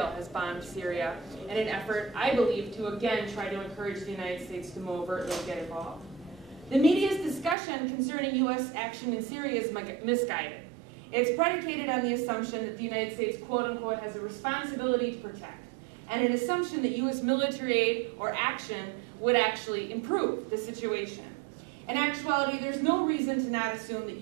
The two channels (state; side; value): drops out; left; at 7.6 s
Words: has bombed Syria in an effort, I believe, to again try to encourage the United States to more overtly get involved. The media's discussion concerning U.S. action in Syria is misguided. It's predicated on the assumption that the United States, quote unquote, has a responsibility to protect, and an assumption that U.S. military aid or action would actually improve the situation. In actuality, there's no reason to not assume that